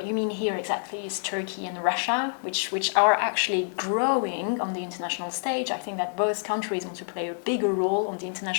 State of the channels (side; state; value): right; silent; digital silence